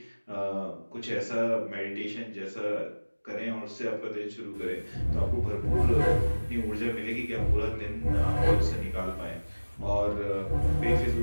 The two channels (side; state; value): both; inverted; correlation -1.00